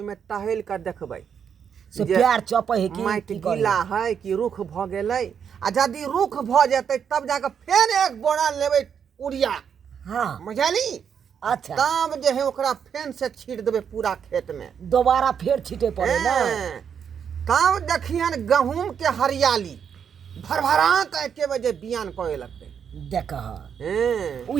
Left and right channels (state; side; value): quieter; left; 7.6 dB